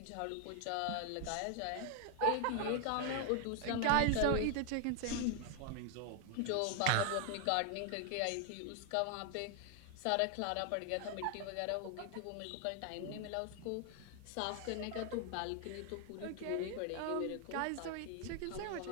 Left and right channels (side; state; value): both; different; correlation 0.00